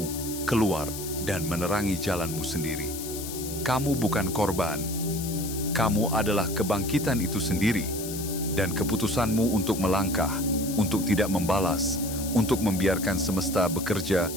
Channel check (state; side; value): noise; left; hiss, 9 dB below the sound